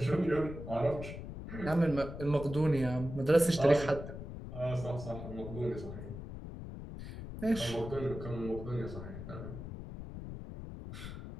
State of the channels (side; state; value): left; noise; rumble, 9 dB below the sound